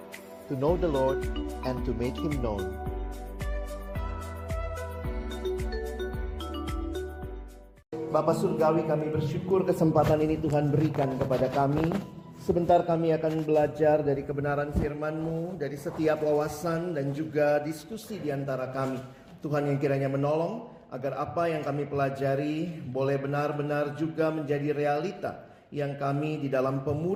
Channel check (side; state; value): both; identical; correlation 1.00